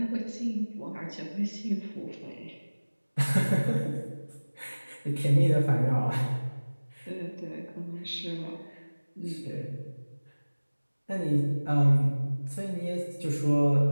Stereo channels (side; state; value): both; inverted; correlation -1.00